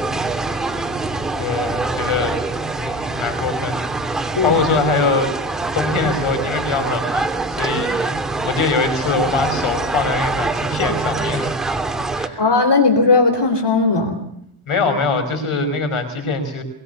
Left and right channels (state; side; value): normal; both; correlation 0.18